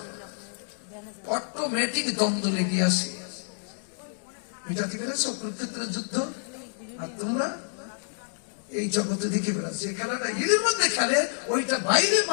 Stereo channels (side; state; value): right; silent; digital silence